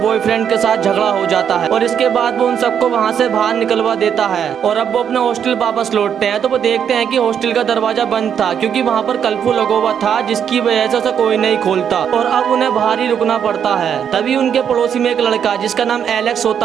के साथ झगड़ा हो जाता है और इसके बाद वो उन सबको वहाँ से बाहर निकलवा देता है और अब वो अपने हॉस्टल वापस लौटते हैं तो वो देखते हैं कि हॉस्टल का दरवाजा बंद था क्योंकि वहाँ पर कर्फ्यू लगा हुआ था, जिसकी वजह से उसे कोई नहीं खोलता और अब उन्हें बाहर ही रुकना पड़ता है। तभी उनके पड़ोसी में एक लड़का जिसका नाम एलेक्स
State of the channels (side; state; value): left; quieter; 8.3 dB